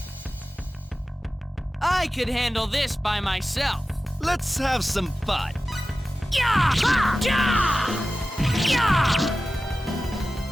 I could handle this by myself. Let's have some fun. Yeah! Yeah! Yeah!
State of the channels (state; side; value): normal; both; correlation 0.95